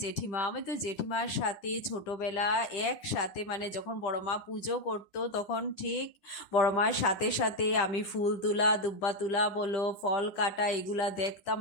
জেঠিমা, আমি তো জেঠিমার সাথে ছোটবেলা একসাথে, মানে যখন বড় মা পুজো করতো তখন ঠিক বড় মার সাথে সাথে আমি ফুল তোলা, দুব্বা তোলা বলো, ফল কাটা, এগুলা দেখতাম,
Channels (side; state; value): right; late; 10 ms